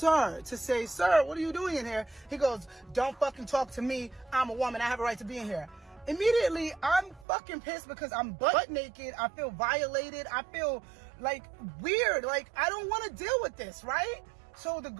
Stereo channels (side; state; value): left; drops out; at 7.2 s